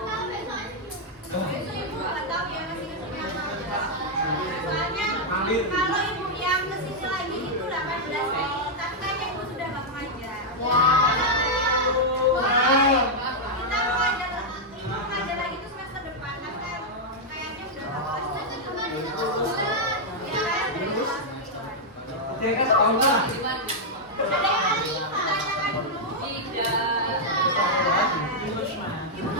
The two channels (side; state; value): both; normal; correlation -0.03